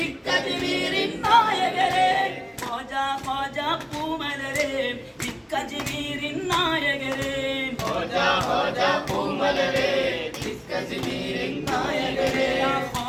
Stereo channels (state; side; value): identical; both; correlation 1.00